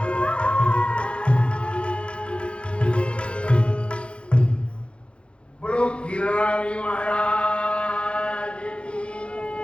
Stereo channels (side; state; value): right; late; 0.058 ms